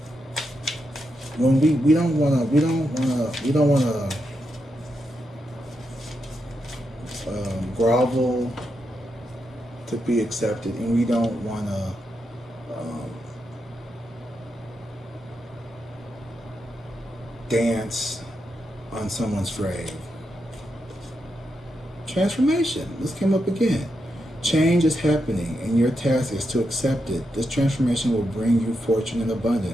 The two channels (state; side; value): normal; both; correlation 0.84